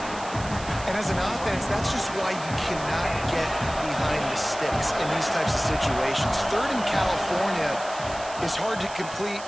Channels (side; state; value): right; noise; hiss, 14 dB below the sound